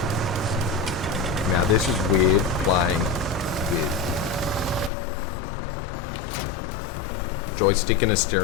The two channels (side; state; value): right; drops out; at 4.9 s